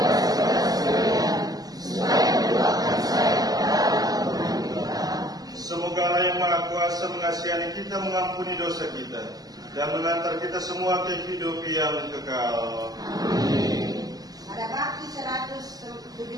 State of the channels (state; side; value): late; left; 0.18 ms